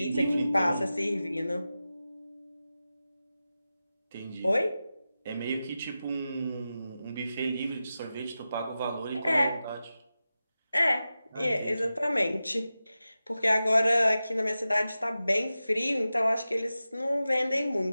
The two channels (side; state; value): both; inverted; correlation -0.93